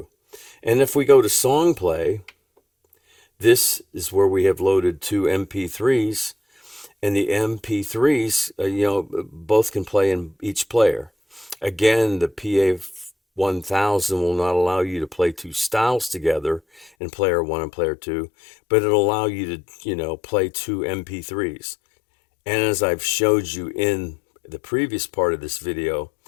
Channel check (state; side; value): drops out; right; at 16.9 s